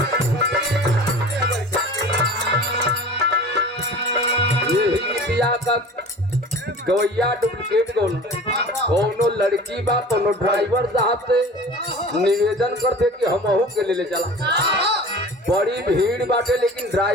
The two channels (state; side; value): normal; both; correlation 0.40